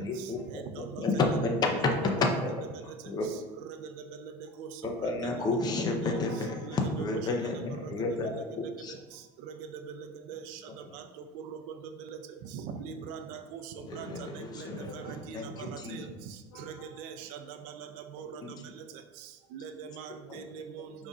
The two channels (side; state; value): both; normal; correlation 0.35